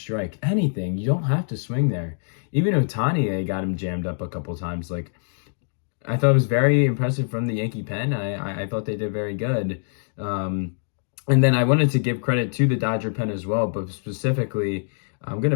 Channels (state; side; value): silent; right; digital silence